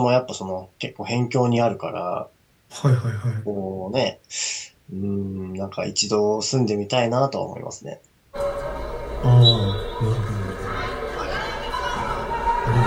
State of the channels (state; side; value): identical; both; correlation 1.00